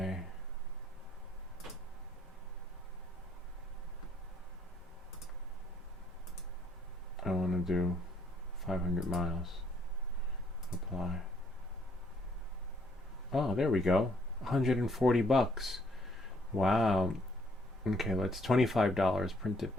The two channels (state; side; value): normal; both; correlation 0.67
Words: I want to do 500 miles. Apply. Oh, there we go. 140 bucks. Wow. Okay, let's $25 printed